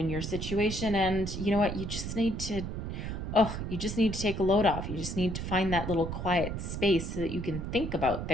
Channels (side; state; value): right; noise; rumble, 5 dB below the sound